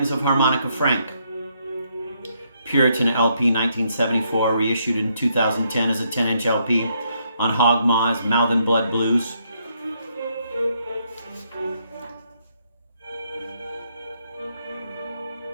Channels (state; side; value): inverted; both; correlation -0.74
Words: of Harmonica Frank. Puritan LP 1974, reissued in 2010 as a 10-inch LP on Hog Maw's Mouth and Blood Blues.